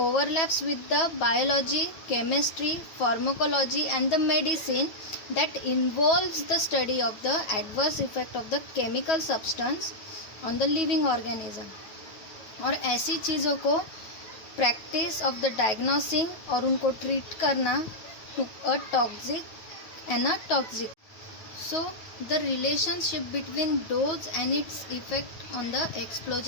overlaps with the biology, chemistry, pharmacology and the medicine that involves the study of the adverse effect of the chemical substance on the living organism. और ऐसी चीज़ों को practice of the diagnosing और उनको treat करना to a toxic and a toxic. So, the relationship between dose and its effect on the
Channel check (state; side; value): late; right; 9.3 ms